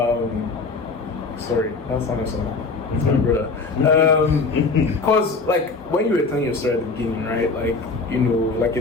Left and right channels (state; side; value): quieter; right; 4.1 dB